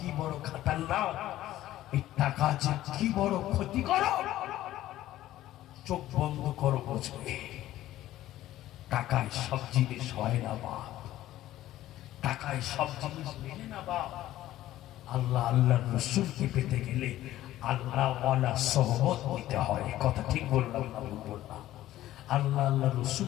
বড় খাতারনাক, এই টাকা যে কি বড় ক্ষতি করো, চোখ বন্ধ করো বুঝবে। টাকায় সব জিনিস হয় না বাপ, টাকায় সব জিনিস মেলে না বাপ। আল্লাহ আল্লাহর রাসূলকে পেতে গেলে আল্লাহ ওয়ালা সোহবত নিতে হয়। কথা ঠিক বললাম না ভুল বললাম? আল্লাহ আল্লাহর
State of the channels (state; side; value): quieter; right; 14.3 dB